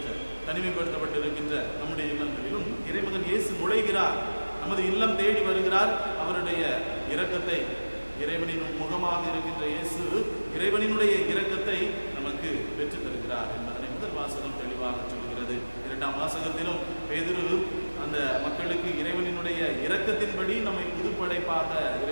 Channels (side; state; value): both; inverted; correlation -1.00